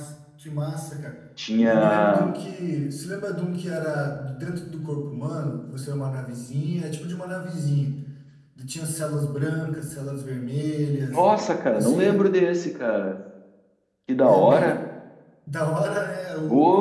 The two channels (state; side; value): identical; both; correlation 1.00